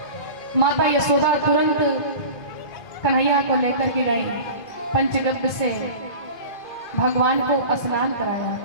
माता यशोदा तुरंत कन्हैया को लेकर के गई, पंचगव्य से भगवान को स्नान कराया,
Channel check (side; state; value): right; late; 2.4 ms